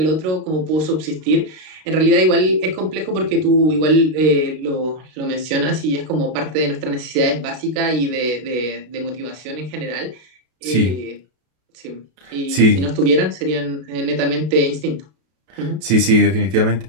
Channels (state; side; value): late; left; 32 ms